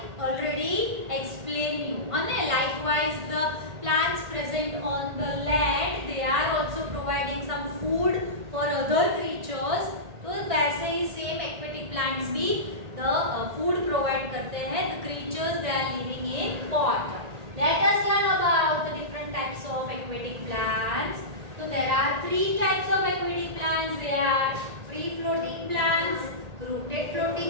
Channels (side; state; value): left; late; 1.8 ms